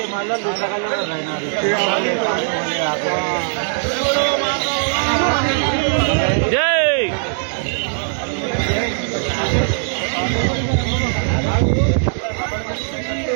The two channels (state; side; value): silent; left; 66 dB below the other